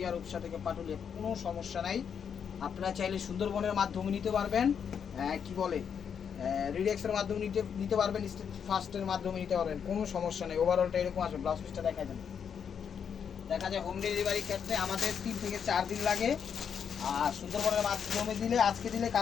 রূপসা থেকে পাটুলিয়া, কোনো সমস্যা নাই। আপনারা চাইলে সুন্দরবনের মাধ্যমে নিতে পারবেন, কি বলে রিডেক্সের মাধ্যমে নিতে পারবেন, স্টেট ফার্স্টের মাধ্যমে নিতে পারবেন, কোনো সমস্যা নেই। ওভারঅলটা এরকম আসবে। ব্লাউজ পিসটা দেখা যায়, দেখা যায় হোম ডেলিভারি ক্ষেত্রে আমাদের 3 থেকে 4 দিন লাগে। আর সুন্দরবনের মাধ্যমে দিলে আজকে দিলে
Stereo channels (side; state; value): right; quieter; 7.4 dB